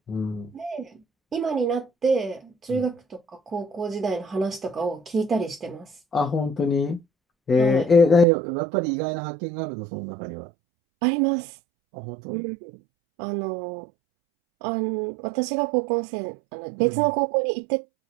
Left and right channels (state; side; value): drops out; left; at 8.2 s